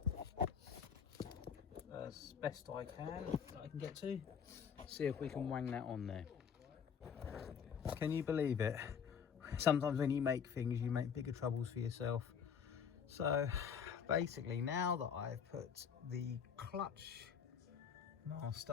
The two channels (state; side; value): quieter; right; 7.2 dB